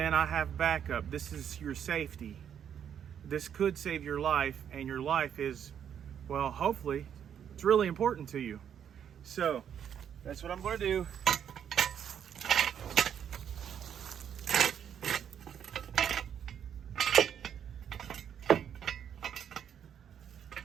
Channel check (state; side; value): quieter; left; 8.7 dB